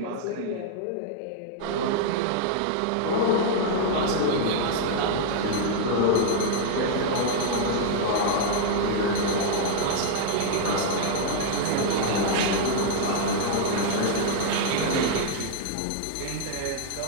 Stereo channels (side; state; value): both; different; correlation 0.00